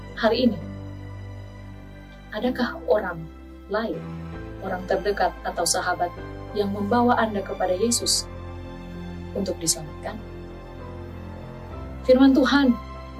hari ini, adakah orang lain, orang terdekat atau sahabat yang membawa Anda kepada Yesus untuk diselamatkan? Firman Tuhan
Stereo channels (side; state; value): both; identical; correlation 1.00